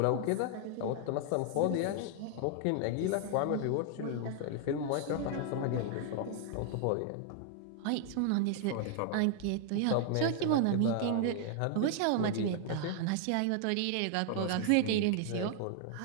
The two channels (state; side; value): different; both; correlation 0.00